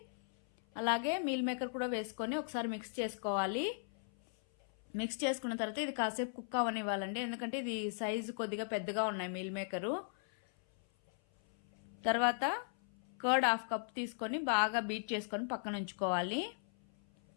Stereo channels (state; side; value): silent; right; 53 dB below the other